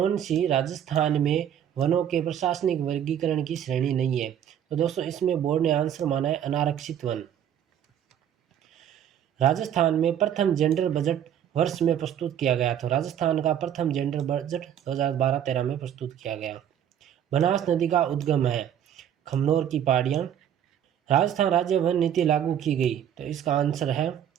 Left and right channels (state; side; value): quieter; left; 9.7 dB